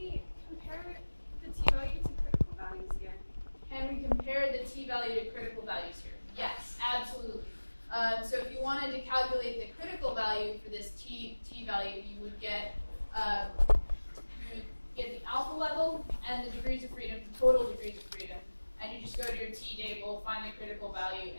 compare the t-value to critical values here? Can we compare the t-value to critical values here? Yes, absolutely. So if you wanted to calculate the critical value for this t-value, you would get the alpha level and the degrees of freedom, total degrees of freedom, and you just go to your t-table, find the critical value,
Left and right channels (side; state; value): both; inverted; correlation -1.00